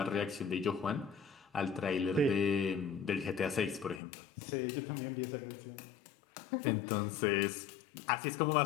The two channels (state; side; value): drops out; right; at 4.0 s